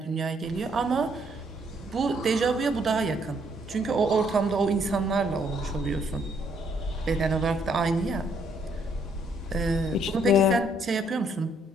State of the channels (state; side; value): normal; both; correlation 0.69